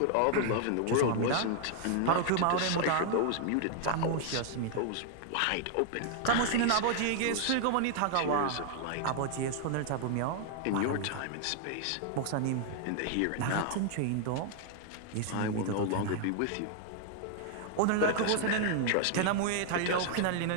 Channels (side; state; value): both; different; correlation 0.00